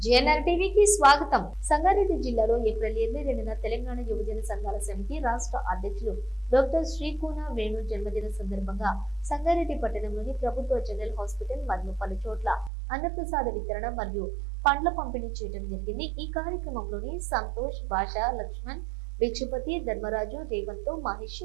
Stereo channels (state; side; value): drops out; left; at 12.7 s